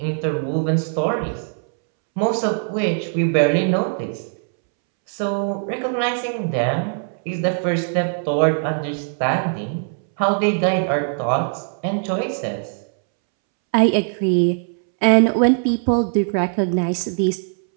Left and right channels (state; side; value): silent; left; 65 dB below the other